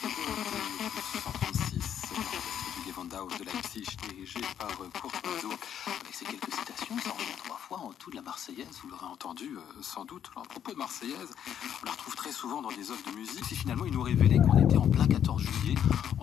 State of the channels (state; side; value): quieter; right; 9.3 dB